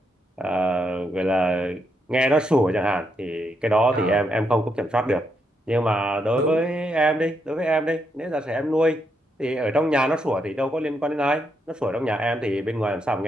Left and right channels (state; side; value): normal; both; correlation 0.79